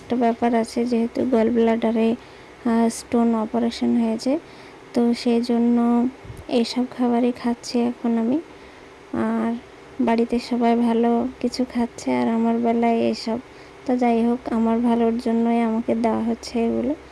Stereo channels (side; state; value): both; identical; correlation 1.00